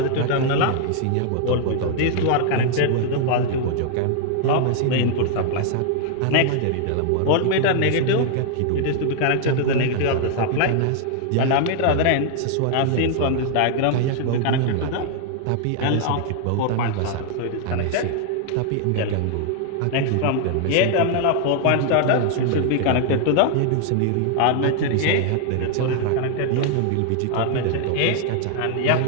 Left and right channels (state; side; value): different; both; correlation -0.01